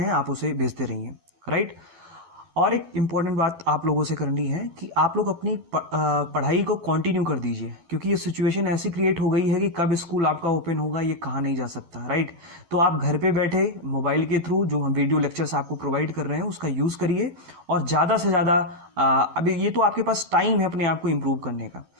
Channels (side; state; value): left; late; 12 ms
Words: आप उसे भेजते रहिए, राइट। और एक इम्पॉर्टेंट बात आप लोगों से करनी है कि आप लोग अपनी पढ़ाई को कंटिन्यू कर दीजिए, क्योंकि ये सिचुएशन ऐसी क्रिएट हो गई है कि कब स्कूल आपका ओपन होगा ये कहा नहीं जा सकता, राइट। तो आप घर पे बैठे मोबाइल के थ्रू जो हम वीडियो लेक्चर्स आपको प्रोवाइड कर रहे हैं उसका यूज़ करिए, और ज़्यादा से ज़्यादा अभी ये तो आपके पास टाइम है अपने आप को इम्प्रूव करने का,